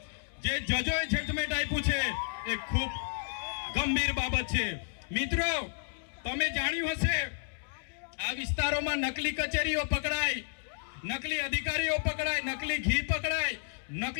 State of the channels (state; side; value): silent; right; digital silence